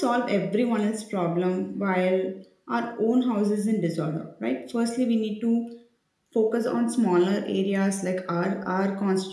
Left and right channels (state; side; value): identical; both; correlation 1.00